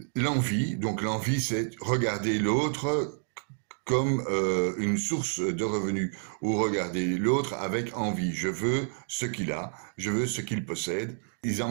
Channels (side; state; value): left; silent; digital silence